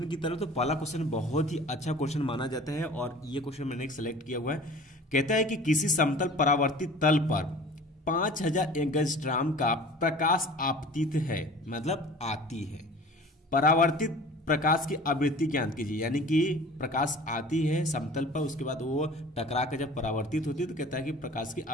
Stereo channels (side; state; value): both; normal; correlation 0.43